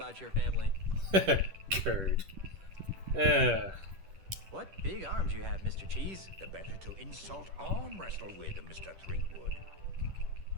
your family. Curd. What big arms you have, Mr. Cheese. The better to insult arm wrestle with, Mr. Threepwood.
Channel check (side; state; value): left; late; 10 ms